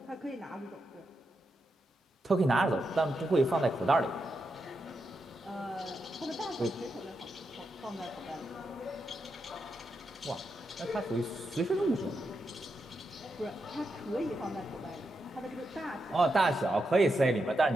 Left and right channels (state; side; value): normal; both; correlation 0.85